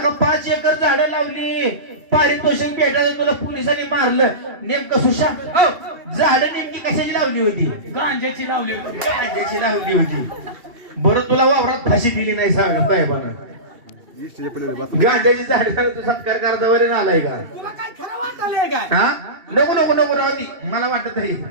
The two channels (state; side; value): late; left; 2.7 ms